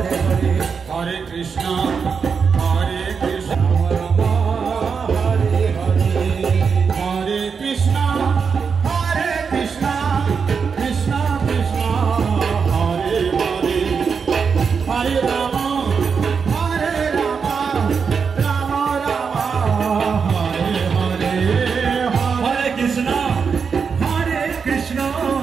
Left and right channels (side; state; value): left; quieter; 5.9 dB